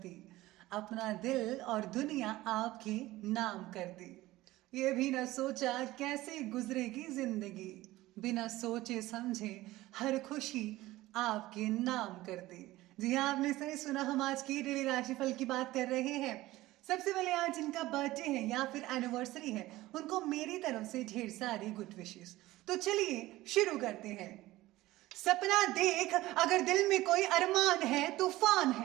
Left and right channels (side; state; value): left; quieter; 17.5 dB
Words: अपना दिल और दुनिया आपके नाम कर दी। ये भी न सोचा कैसे गुजरेगी जिंदगी, बिना सोचे समझे हर खुशी आपके नाम कर दी। जी हाँ, आपने सही सुना। हम आज की डेली राशिफल की बात कर रहे हैं। सबसे पहले आज जिनका बर्थडे है या फिर एनिवर्सरी है, उनको मेरी तरफ से ढेर सारी गुड विशेस। तो चलिए शुरू करते हैं। सपना देख, अगर दिल में कोई अरमान है, तूफान